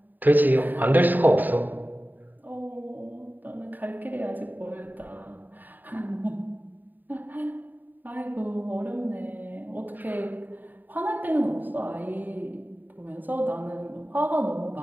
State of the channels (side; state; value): left; late; 0.089 ms